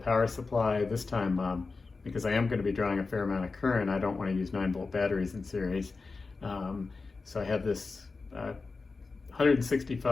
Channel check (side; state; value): right; quieter; 4.1 dB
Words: supply. This time, because I am going to be drawing a fair amount of current, I don't want to use 9-volt batteries in series. So I have this